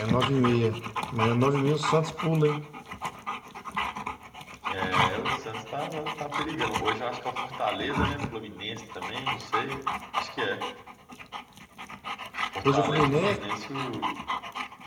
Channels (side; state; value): both; identical; correlation 1.00